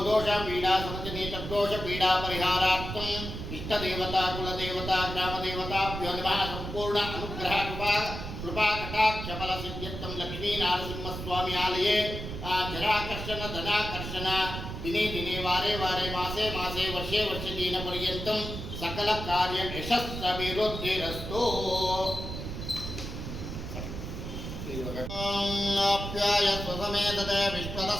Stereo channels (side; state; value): right; noise; rumble, 7 dB below the sound